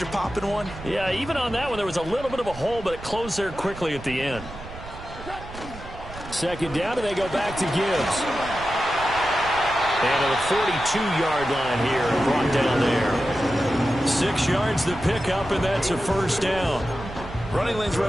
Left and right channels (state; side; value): noise; right; rumble, 14 dB below the sound